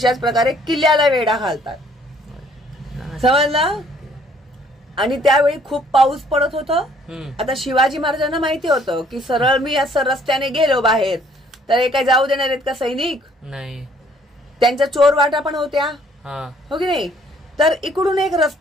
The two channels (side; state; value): both; normal; correlation 0.61